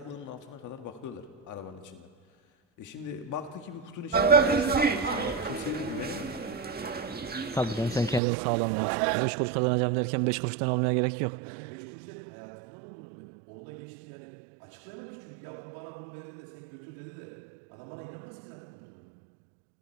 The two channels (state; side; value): drops out; left; at 8.2 s